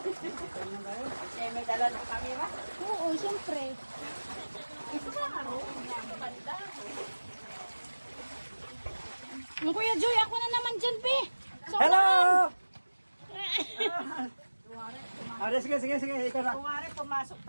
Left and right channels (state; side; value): inverted; both; correlation -1.00